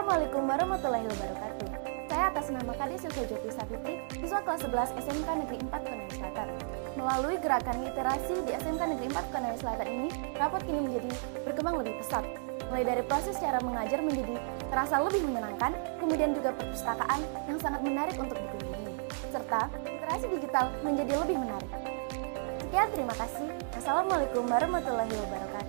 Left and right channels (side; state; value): left; silent; digital silence